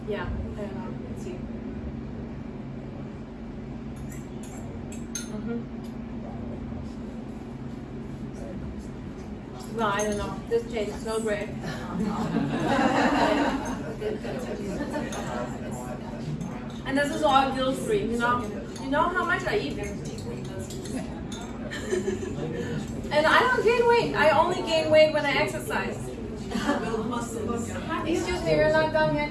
Yeah, I don't know. Let's see. Well, I don't know. This tastes so great. And this is all guilt-free, you know? You know how much I eat. And I don't gain weight. I only gain weight when I exercise. Excuse me, we're not done yet.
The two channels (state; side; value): identical; both; correlation 1.00